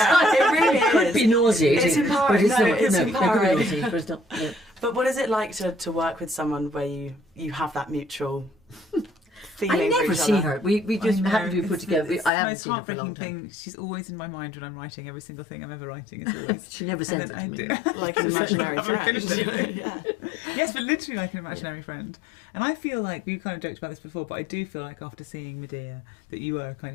it really It could is. be nauseating. It's empowering. But No, it it's could be empowering. nauseating, but it's not. Yeah. But what is it like to work with someone where you have that mutual feeling I for never each see other? her. We just I know, happen to be put it's together. the I haven't most seen her for a long heartbreaking time. thing. She's always in my mind when I'm writing every single thing I'm ever writing. It's always. She never sends it And to then me. I do. Like an imaginary I haven't friend. finished it. Yeah. Yes, but literally like an imaginary friend. And I feel like, we kind of joked about this before, but I do feel like after seeing Medea that you were a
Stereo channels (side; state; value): right; drops out; at 12.3 s